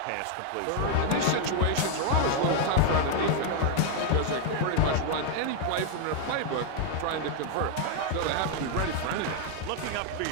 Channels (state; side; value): different; both; correlation 0.00